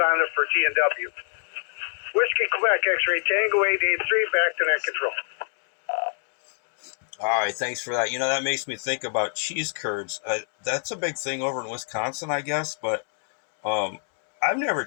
it for T&W. Whiskey Quebec X-Ray Tango 883, back to Net Control. All right, thanks for that. That makes me think about cheese curds. That's a big thing over in Wisconsin, I guess, but I've never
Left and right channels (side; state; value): right; silent; 62 dB below the other